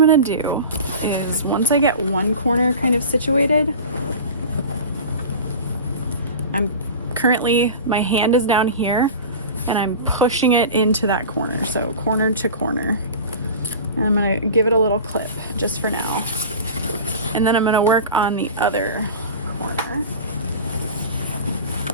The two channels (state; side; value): inverted; both; correlation -0.34